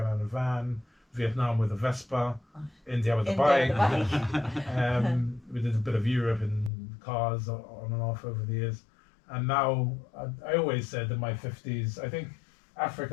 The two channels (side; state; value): right; drops out; at 6.7 s